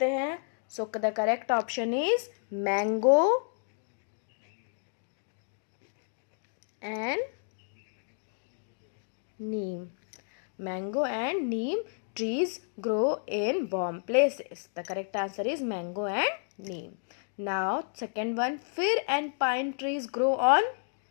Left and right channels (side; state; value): right; silent; digital silence